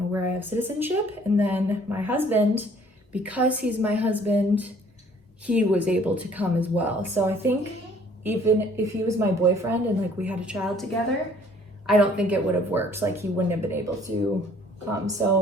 where I have citizenship. And then my husband, because he's my husband, he was able to come as well. So I think even if he was my boyfriend and like we had a child together, I don't think it would have worked. Like he wouldn't have been able to come.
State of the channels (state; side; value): normal; both; correlation 0.57